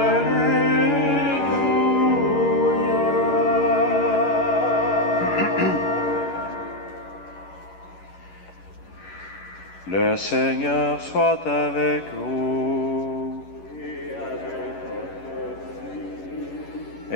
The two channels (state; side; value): late; right; 11 ms